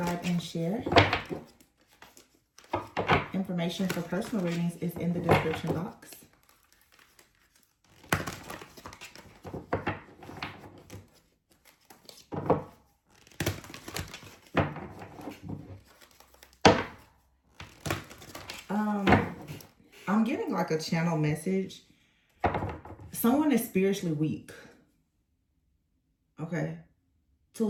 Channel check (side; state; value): both; identical; correlation 1.00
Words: and share. Information for personal readings is in the description box. I'm getting like a channel message. Someone is spiritually weak. Okay.